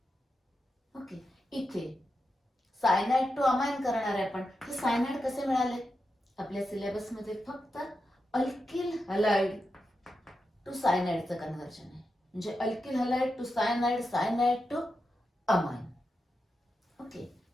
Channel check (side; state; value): both; normal; correlation 0.88